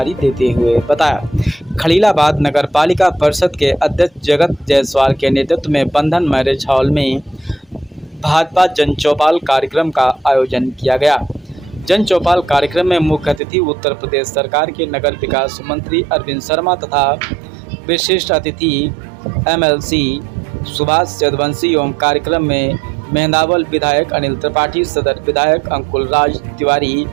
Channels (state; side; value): drops out; left; at 13.4 s